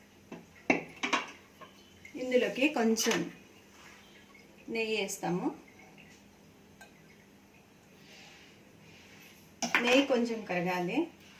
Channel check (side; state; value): both; identical; correlation 1.00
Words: ఇందులోకి కొంచెం నెయ్యి వేస్తాము. నెయ్యి కొంచెం కరగాలి.